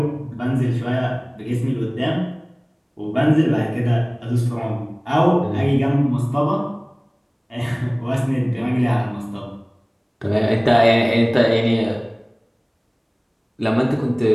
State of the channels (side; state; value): both; identical; correlation 1.00